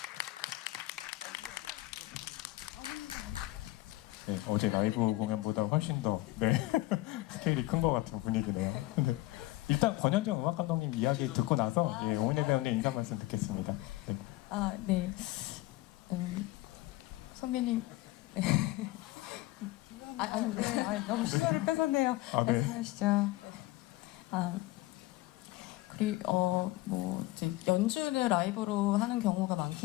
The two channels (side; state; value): right; quieter; 18.6 dB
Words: 네, 어제 라이브 공연보다 훨씬 더 네, 스케일이 큰 것 같은 분위기네요. 네. 일단 권현정 음악 감독님 이야기 듣고 나서 예, 오민혜 배우님 인사 말씀 듣겠습니다. 네. 아, 네. 선배님. 네. 네, 너무 시간을 뺏었네요. 아, 네. 말씀하시죠. 아, 그리고 뭐 이제 연주를 라이브로 하는 경우가